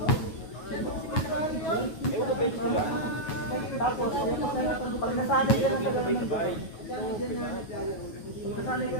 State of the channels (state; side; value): late; right; 9.4 ms